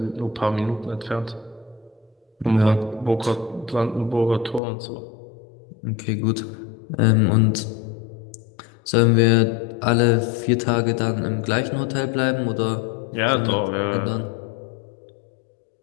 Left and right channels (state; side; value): drops out; right; at 4.6 s